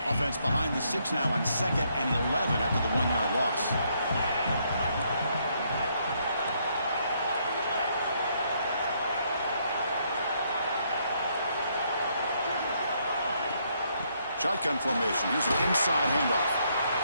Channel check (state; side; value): inverted; both; correlation -0.72